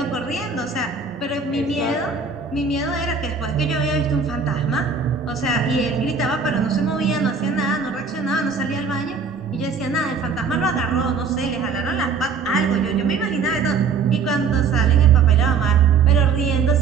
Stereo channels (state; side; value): quieter; left; 5.4 dB